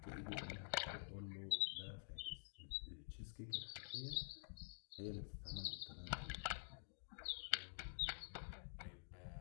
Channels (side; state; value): right; silent; digital silence